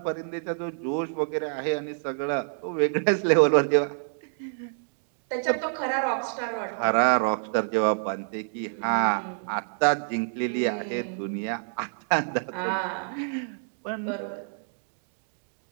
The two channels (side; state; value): left; silent; digital silence